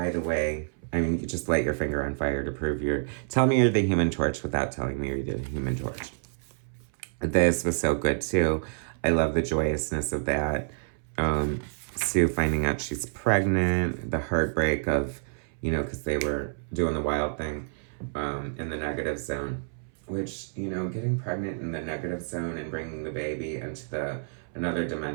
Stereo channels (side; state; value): left; silent; 59 dB below the other